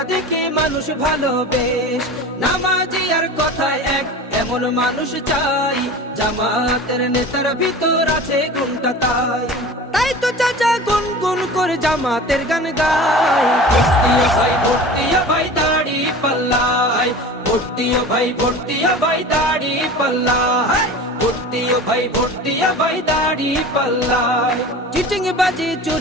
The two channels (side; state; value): both; normal; correlation 0.36